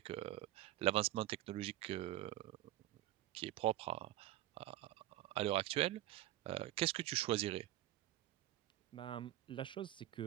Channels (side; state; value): left; quieter; 14.8 dB